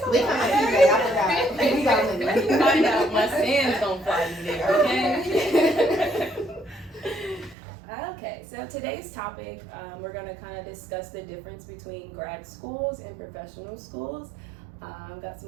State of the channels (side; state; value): left; drops out; at 7.6 s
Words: so We come at PJ, I forgot. We got money. Find out my sand's gonna fly me there, okay? Okay, so today's topic, we're gonna kind of discuss the difference between grad schools and professional schools. I've got